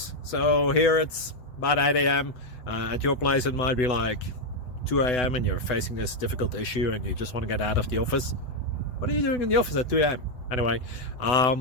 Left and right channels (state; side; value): late; right; 7.9 ms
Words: So here it's about 8 a.m. At your place it might be like 2 a.m. and you're facing this difficult issue and you just want to get out of the office. What are you doing in the office at 2 a.m.? Anyway,